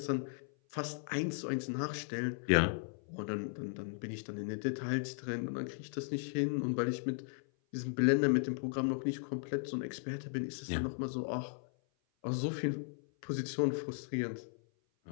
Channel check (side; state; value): right; silent; 53 dB below the other